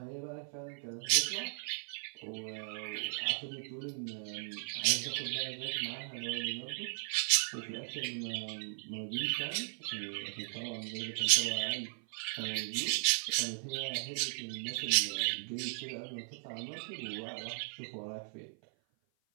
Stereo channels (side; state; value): left; silent; 53 dB below the other